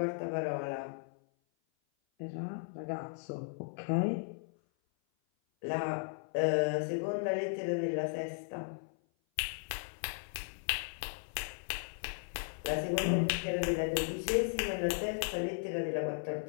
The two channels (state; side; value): silent; right; 54 dB below the other